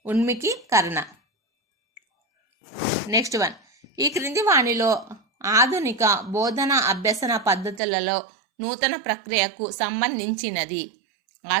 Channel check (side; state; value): left; drops out; at 7.8 s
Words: ఉన్ముఖీకరణ. నెక్స్ట్ వన్, ఈ క్రింది వాణిలో ఆధునిక బోధన అభ్యసన పద్ధతులలో నూతన ప్రక్రియకు సంబంధించినది.